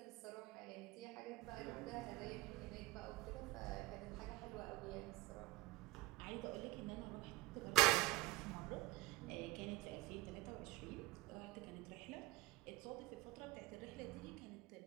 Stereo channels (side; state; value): left; quieter; 19.9 dB